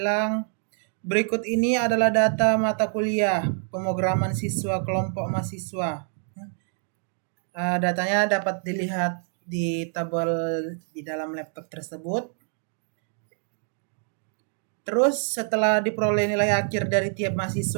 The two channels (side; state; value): left; silent; 56 dB below the other